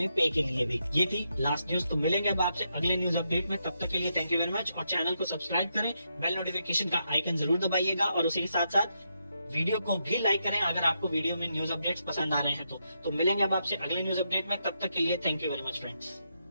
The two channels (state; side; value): inverted; both; correlation -0.81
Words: पे के लिए भी। ये थी लास्ट न्यूज। तो मिलेंगे अब आपसे अगले न्यूज अपडेट में, तब तक के लिए थैंक यू वेरी मच। और चैनल को सब्सक्राइब करें, बेल नोटिफिकेशन का आइकन जरूर दबाइएगा और उसी के साथ साथ वीडियो को भी लाइक करें अगर आपको वीडियो में न्यूज अपडेट्स पसंद आ रहे हैं तो मिलेंगे अब आपसे अगले न्यूज अपडेट में, तब तक के लिए thank you very much friends.